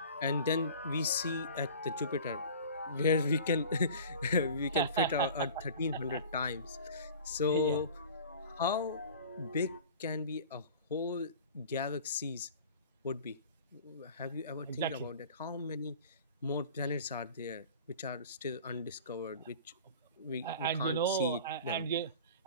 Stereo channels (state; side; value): inverted; both; correlation -0.41